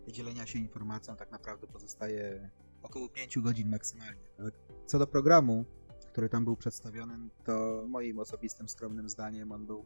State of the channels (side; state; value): both; inverted; correlation -1.00